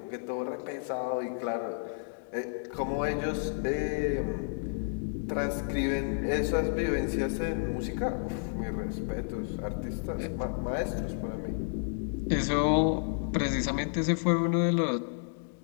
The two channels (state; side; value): silent; right; digital silence